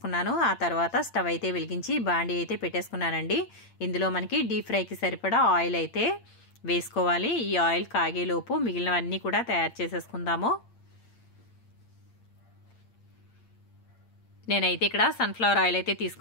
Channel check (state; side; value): late; right; 8.7 ms